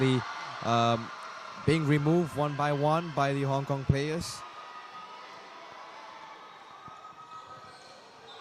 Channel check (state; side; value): identical; both; correlation 1.00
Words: being removed one by one by the Hong Kong players.